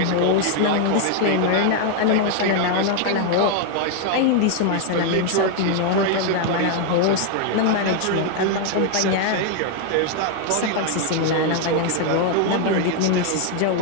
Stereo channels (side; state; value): both; different; correlation 0.00